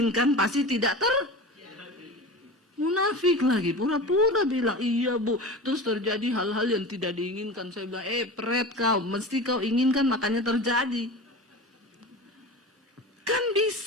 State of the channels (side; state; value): both; normal; correlation 0.32